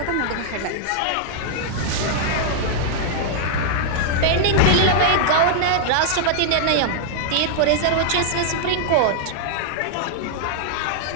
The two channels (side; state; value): both; different; correlation -0.01